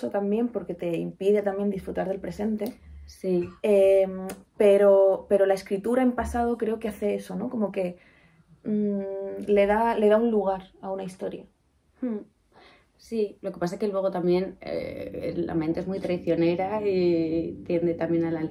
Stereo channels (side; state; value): both; identical; correlation 1.00